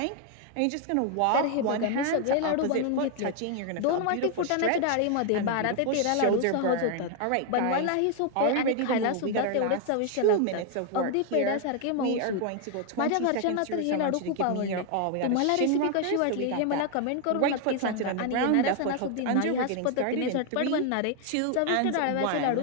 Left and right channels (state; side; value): different; both; correlation 0.00